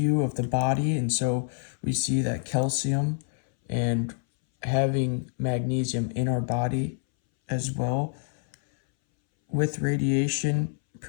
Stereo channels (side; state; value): right; silent; 60 dB below the other